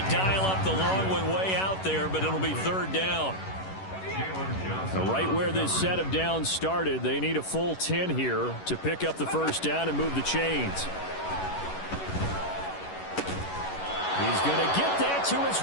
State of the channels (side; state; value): right; late; 11 ms